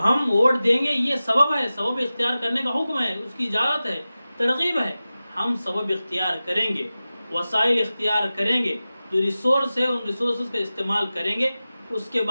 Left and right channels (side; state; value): both; inverted; correlation -0.95